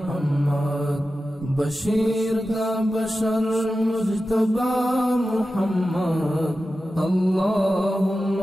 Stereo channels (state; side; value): normal; both; correlation 0.93